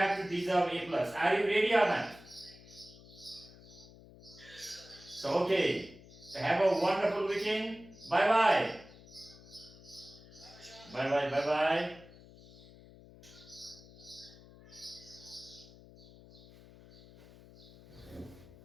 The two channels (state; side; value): noise; left; hum, 21 dB below the sound